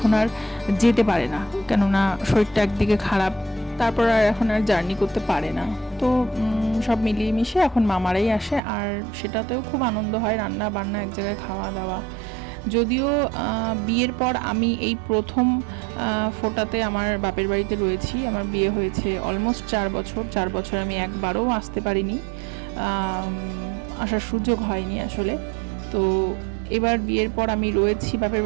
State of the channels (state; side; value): drops out; left; at 8.6 s